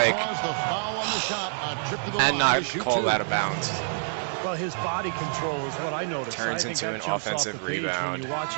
he calls the foul on the shot. A trip to the and line not to shoot called two. out of bounds. Well, his body control is what I noticed. Turns I think into that an jumps off offensive the page rebound. When you watch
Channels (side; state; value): left; silent; 59 dB below the other